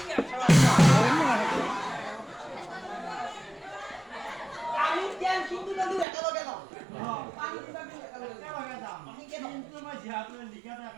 আমি কেন কিন্তু নদী একেলগে যাওঁ পানী দিবা কিন্তু একেলগে যাওঁ একেলগে যাম কিন্তু মই যিহেতু লিখাটো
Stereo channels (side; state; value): left; drops out; at 6.1 s